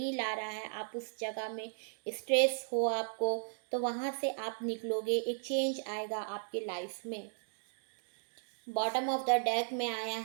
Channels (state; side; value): silent; left; digital silence